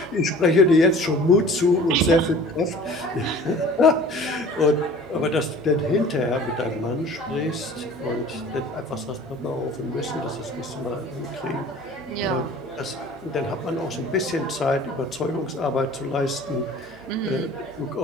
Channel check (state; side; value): normal; both; correlation 0.45